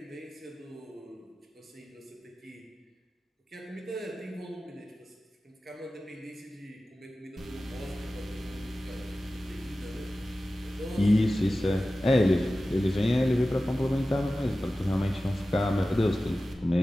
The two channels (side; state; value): both; normal; correlation 0.95